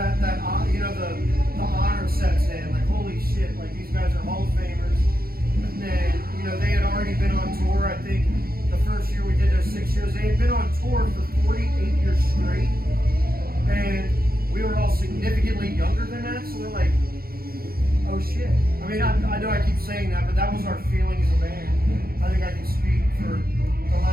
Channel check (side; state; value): left; late; 0.44 ms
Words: you know, the honor sets in. Like, holy shit! Like, these guys are Hall of Famers. And then, you know, they had already been on tour. I think the first year we did those 6 shows, they had been on tour for 48 years straight, and we were all significantly younger than that. So we're like, oh shit. I mean, I know I keep saying that, but that was our feeling as a band. I think I can speak for the